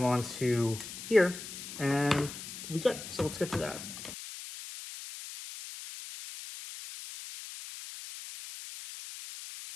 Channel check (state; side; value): noise; left; hiss, 10 dB below the sound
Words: onto here, and we good. So let's get to that.